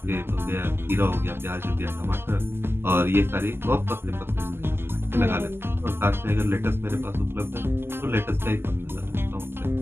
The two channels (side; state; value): left; late; 0.12 ms